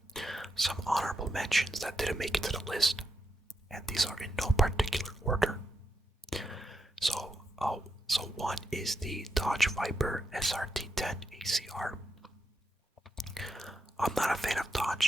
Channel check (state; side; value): normal; both; correlation 0.85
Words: Some honorable mentions that didn't make it to the list, and these are in no particular order. So, so one is the Dodge Viper SRT10 ACR. I'm not a fan of